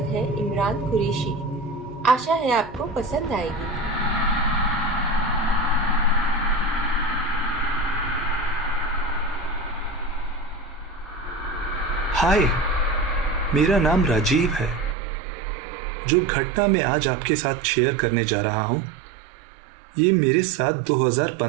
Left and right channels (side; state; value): left; drops out; at 15.0 s